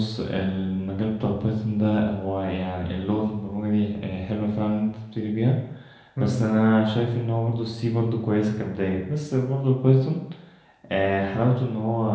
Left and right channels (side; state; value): both; identical; correlation 1.00